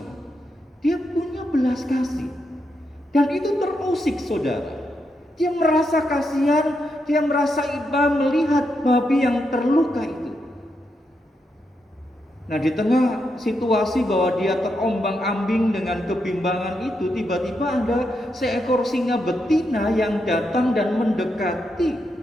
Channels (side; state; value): both; normal; correlation 0.83